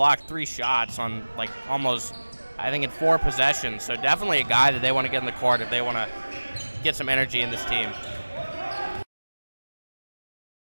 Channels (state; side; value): inverted; both; correlation -1.00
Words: 3 shots on almost, I think, in 4 possessions. So definitely a guy that they want to get in the court if they want to get some energy in this team.